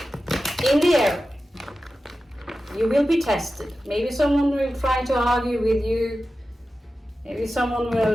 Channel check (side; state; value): both; normal; correlation 0.93